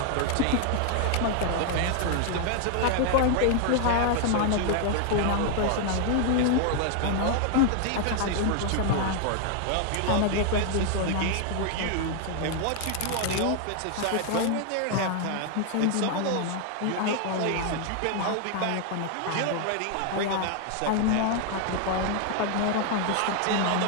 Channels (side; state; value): both; different; correlation 0.00